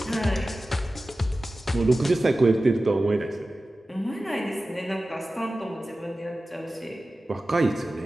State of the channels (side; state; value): both; normal; correlation 0.95